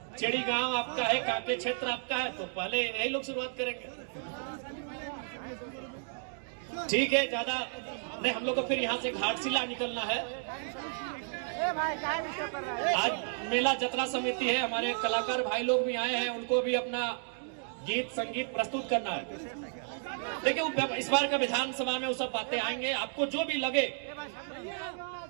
चेड़ी गांव आपका है, काके क्षेत्र आपका है, तो पहले यही लोग शुरुआत करेंगे। ठीक है, ज्यादा नहीं, हम लोग को फिर यहाँ से घाटशिला निकलना है। आज मेला जतरा समिति है, हमारे कलाकार भाई लोग भी आए हैं, उनको भी अपना गीत संगीत प्रस्तुत करना है। देखिए, इस बार का विधानसभा में वो सब बातें आएंगे, आपको जो भी लगे।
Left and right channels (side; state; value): left; silent; 56 dB below the other